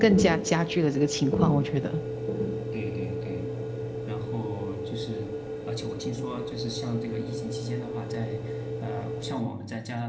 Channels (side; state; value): both; identical; correlation 1.00